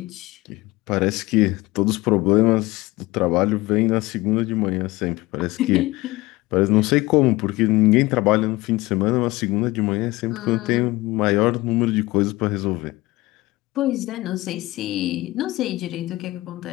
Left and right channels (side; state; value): right; quieter; 20.0 dB